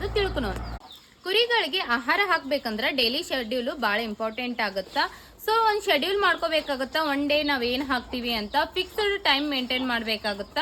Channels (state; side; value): identical; both; correlation 1.00